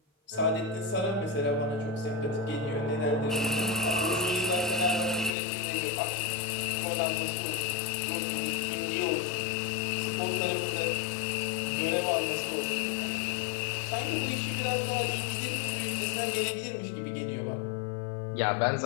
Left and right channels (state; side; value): drops out; right; at 5.3 s